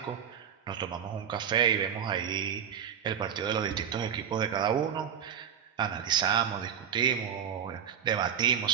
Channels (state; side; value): quieter; left; 8.5 dB